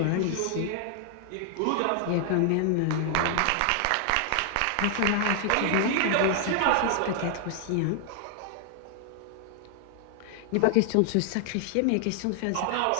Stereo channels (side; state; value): both; different; correlation 0.00